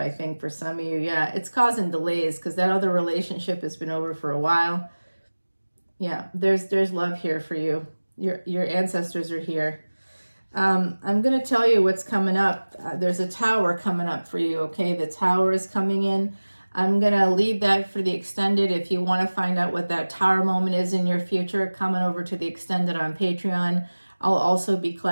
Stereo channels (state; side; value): inverted; both; correlation -1.00